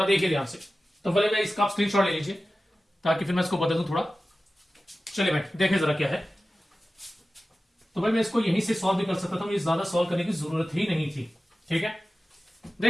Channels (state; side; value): normal; both; correlation 0.95